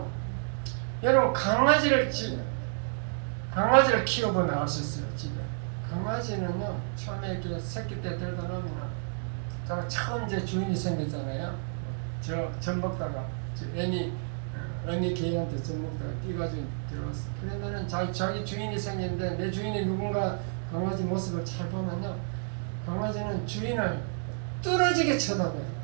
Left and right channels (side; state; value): left; silent; digital silence